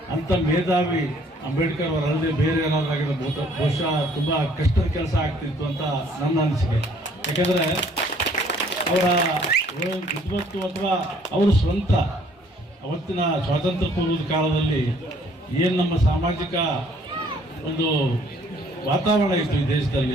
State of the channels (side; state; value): both; normal; correlation 0.60